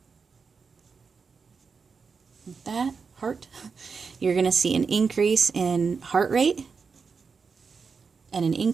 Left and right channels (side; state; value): left; quieter; 5.3 dB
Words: Like that, heart. You're going to see an increase in heart rate and an